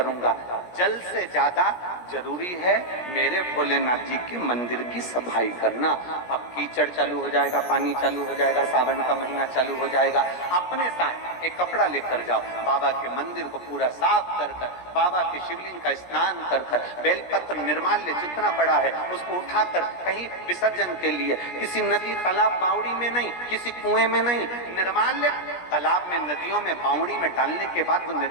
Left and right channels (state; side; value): late; right; 17 ms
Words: जल से ज्यादा जरूरी है मेरे भोलेनाथ जी के मंदिर की सफाई करना। अब कीचड़ चालू हो जाएगा, पानी चालू हो जाएगा, सावन का महीना चालू हो जाएगा, अपने साथ एक कपड़ा लेकर जाओ, बाबा के मंदिर को पूरा साफ कर कर, बाबा के शिवलिंग का स्नान कर कर, बेलपत्र निर्माल्य जितना पड़ा है उसको उठाकर कहीं विसर्जन के लिए, किसी नदी तालाब बावड़ी में नहीं, किसी कुएं में नहीं, निर्माल्य तालाब में, नदियों में, बावड़ी में डालने के बाद वो